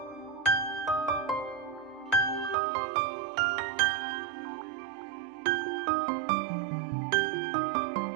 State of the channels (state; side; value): drops out; left; at 2.6 s